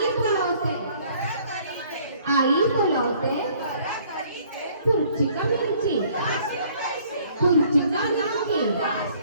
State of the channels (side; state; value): both; inverted; correlation -0.58